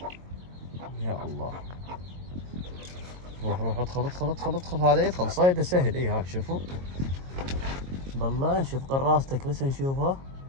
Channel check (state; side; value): late; left; 22 ms